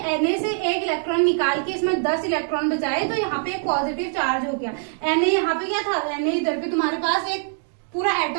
Na से एक इलेक्ट्रॉन निकाल के इसमें 10 इलेक्ट्रॉन बचाए तो यहाँ पे एक पॉजिटिव चार्ज हो गया। Na यहाँ पे क्या था, Na इधर पे तुम्हारे पास एक पूरा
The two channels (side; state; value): left; silent; digital silence